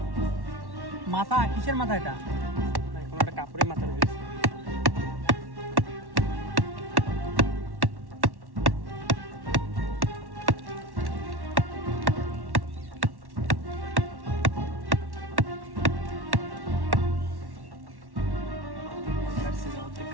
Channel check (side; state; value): left; late; 1.1 ms